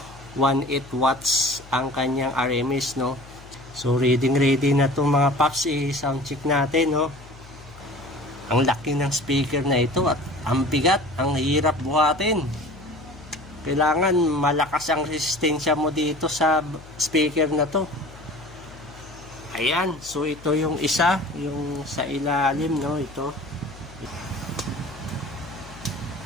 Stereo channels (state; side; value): noise; left; hum, 20 dB below the sound